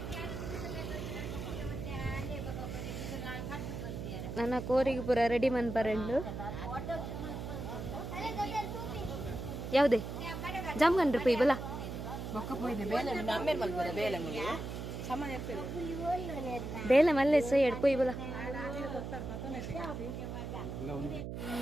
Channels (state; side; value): noise; right; hum, 6 dB below the sound